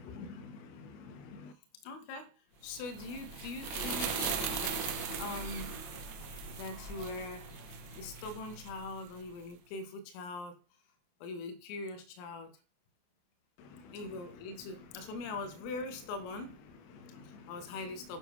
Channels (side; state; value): right; late; 28 ms